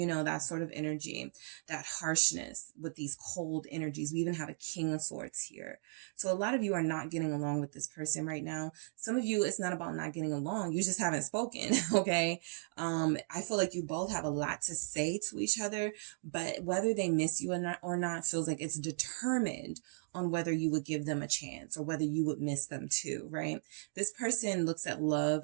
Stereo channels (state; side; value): silent; left; digital silence